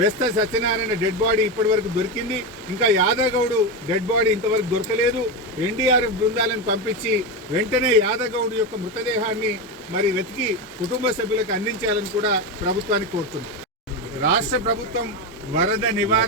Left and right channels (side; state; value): both; normal; correlation 0.14